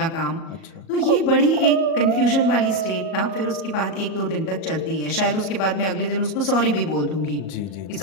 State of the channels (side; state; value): right; late; 37 ms